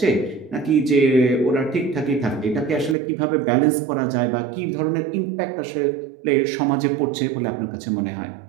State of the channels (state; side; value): drops out; left; at 3.0 s